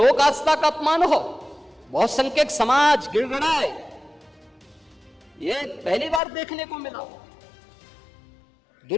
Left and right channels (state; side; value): drops out; right; at 6.2 s